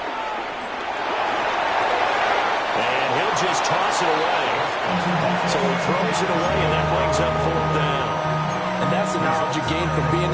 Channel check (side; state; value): both; identical; correlation 1.00